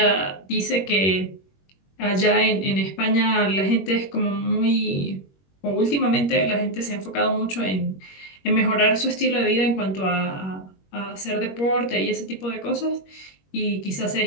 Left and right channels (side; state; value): right; late; 21 ms